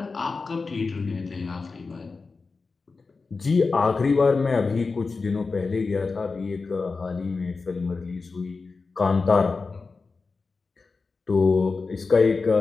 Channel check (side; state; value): right; quieter; 4.2 dB